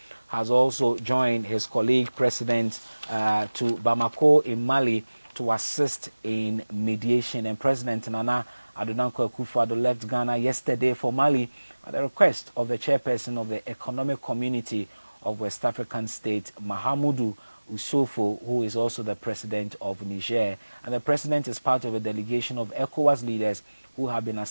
has also joined his colleague President to Bamako in Mali to assist in mediation. And President Nana Addo Dankwa Akufo-Addo left Ghana yesterday for Mali at the request of the chairperson of the Economic Community of West African State, Mahamudu Usofo, who is also the president of Niger. And the president is part of a delegation of ECOWAS leaders who have been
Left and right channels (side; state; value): both; inverted; correlation -1.00